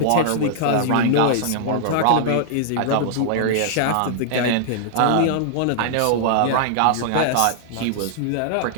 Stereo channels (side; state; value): both; different; correlation -0.01